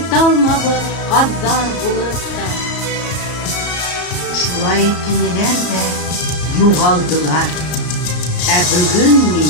gazzar bulutta. Şulay tiniler de yuğaldılar. Bugün mi?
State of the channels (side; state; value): right; late; 34 ms